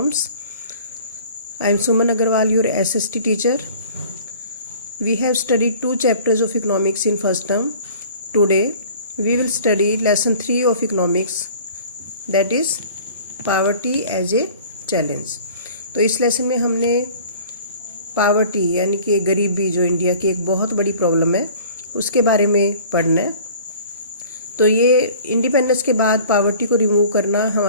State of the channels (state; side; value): inverted; both; correlation -0.47